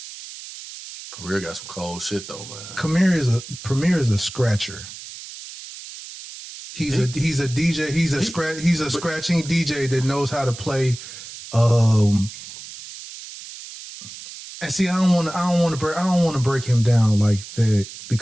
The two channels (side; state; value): right; noise; hiss, 13 dB below the sound